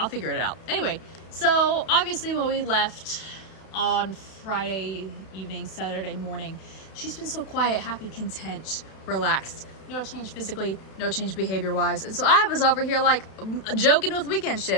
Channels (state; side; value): late; right; 32 ms